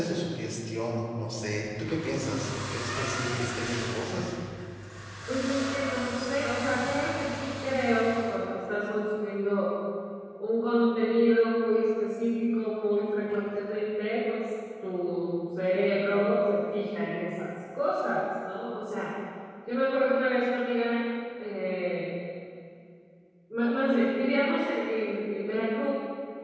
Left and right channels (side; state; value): both; identical; correlation 1.00